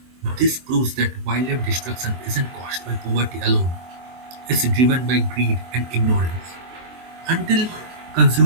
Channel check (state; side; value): late; left; 23 ms